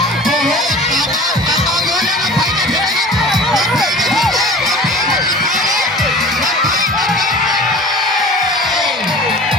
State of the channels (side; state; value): both; normal; correlation 0.40